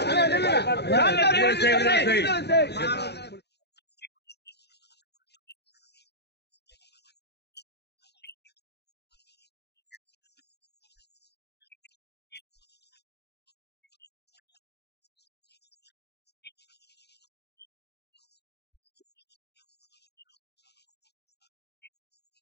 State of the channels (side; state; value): right; late; 0.48 ms